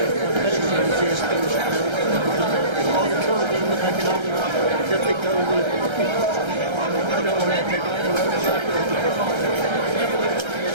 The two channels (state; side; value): late; left; 1.3 ms